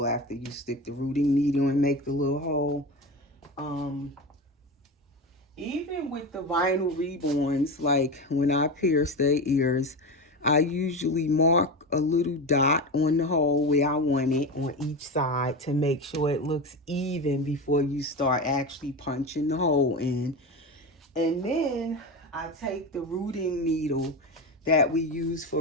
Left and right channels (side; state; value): both; normal; correlation 0.22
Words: after you stick the rooting needle and make the little hole. Even with the vinyl reborns, like when I pierce their ears, I usually mark a little dot on the hole where I want it on each side to make sure it looks even before you start actually punching the hole in. And then I take the rooting needle that we use for